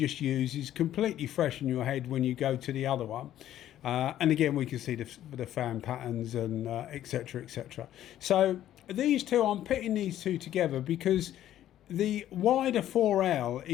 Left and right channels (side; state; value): right; quieter; 12.2 dB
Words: use is completely fresh in your head when you go to the other one. And again, we can see the fan patterns and etc, etc. So these two, I'm pitting these two together because the Wider4L